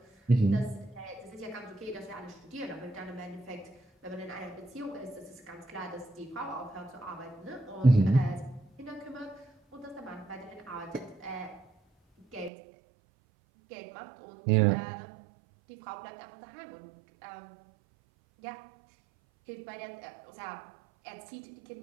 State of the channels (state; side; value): drops out; left; at 12.5 s